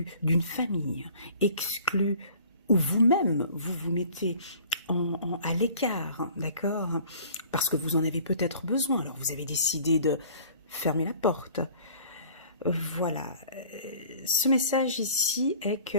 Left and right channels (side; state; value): both; inverted; correlation -0.50